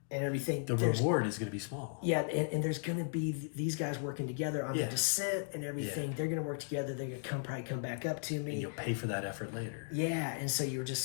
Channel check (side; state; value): right; silent; digital silence